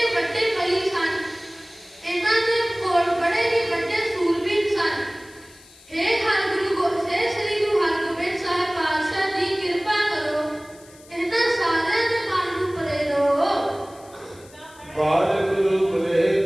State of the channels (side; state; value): left; noise; hiss, 24 dB below the sound